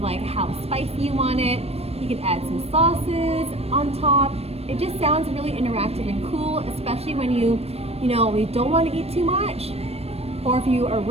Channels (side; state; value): left; late; 0.29 ms